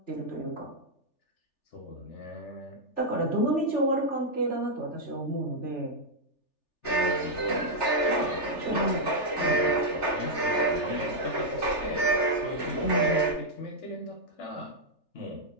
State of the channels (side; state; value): right; late; 3.4 ms